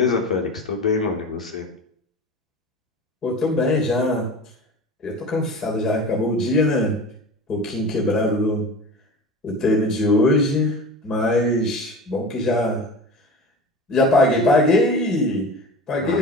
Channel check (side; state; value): both; normal; correlation 0.34